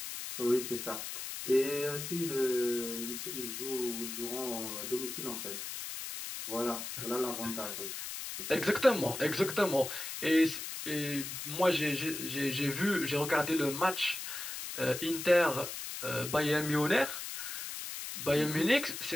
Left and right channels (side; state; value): left; noise; hiss, 7 dB below the sound